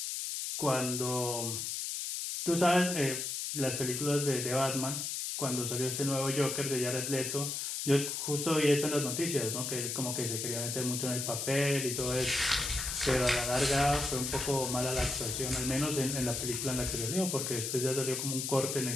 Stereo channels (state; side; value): noise; left; hiss, 3 dB below the sound